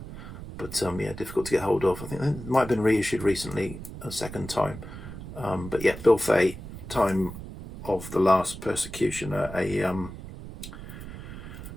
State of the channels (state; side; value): noise; right; rumble, 11 dB below the sound